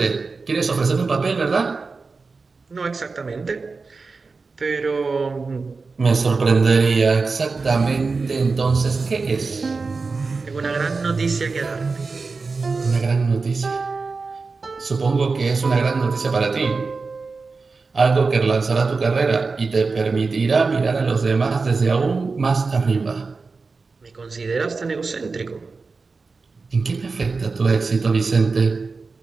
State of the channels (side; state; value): left; quieter; 4.3 dB